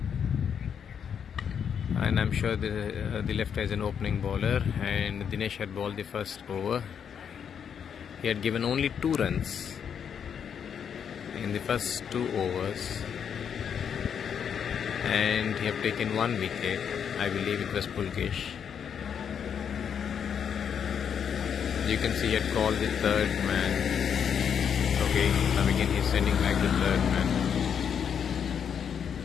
And I'm sure the left is an opening bowler, and Dinesh had bowled the first over. He had given only 2 runs in the first 2 overs, and he had taken 1 wicket. I believe it was Pulkesh. You can see he had called the 3rd man. Okay, now again he's sending back the 3rd man.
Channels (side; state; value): right; quieter; 7.7 dB